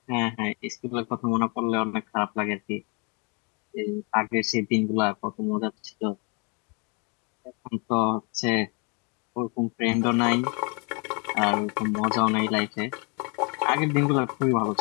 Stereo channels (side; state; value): right; quieter; 33.5 dB